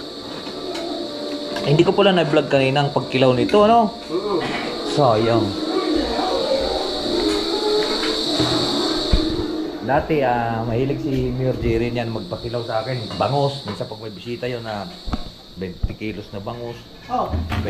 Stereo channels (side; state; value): both; identical; correlation 1.00